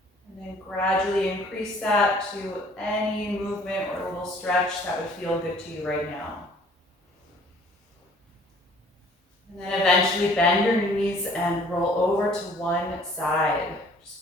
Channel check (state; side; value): normal; both; correlation 0.55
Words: and then gradually increase that to any movement or a little stretch that would feel good to you right now. And then eventually bend your knees and roll over to one side,